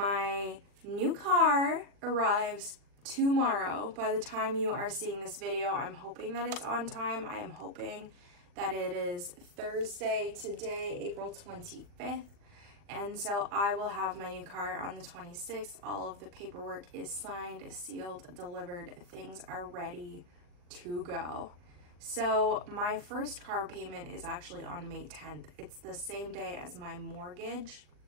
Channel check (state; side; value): late; left; 40 ms